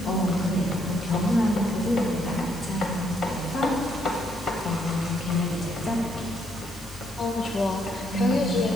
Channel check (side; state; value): left; noise; hiss, 18 dB below the sound